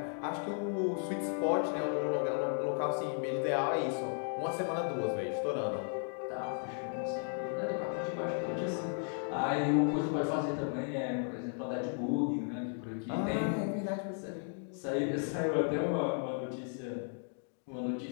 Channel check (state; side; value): silent; right; 54 dB below the other